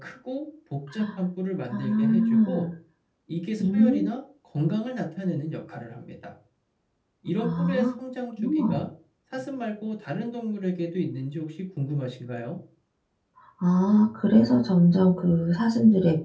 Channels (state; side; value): identical; both; correlation 1.00